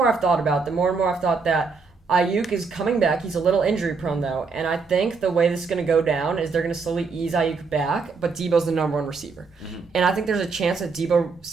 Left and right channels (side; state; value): left; quieter; 4.7 dB